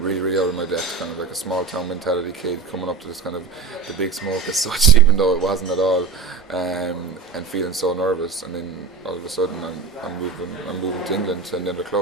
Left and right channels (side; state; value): left; quieter; 5.1 dB